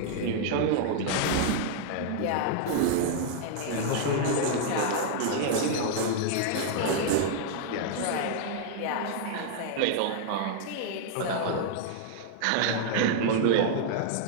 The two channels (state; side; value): different; both; correlation -0.01